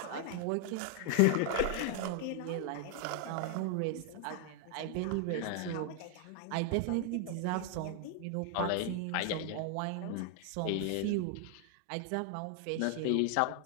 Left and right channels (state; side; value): different; both; correlation 0.00